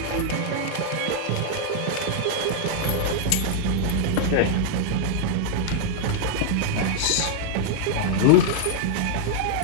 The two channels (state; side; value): different; both; correlation -0.01